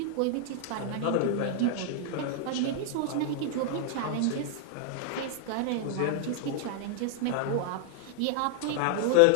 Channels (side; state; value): both; different; correlation 0.00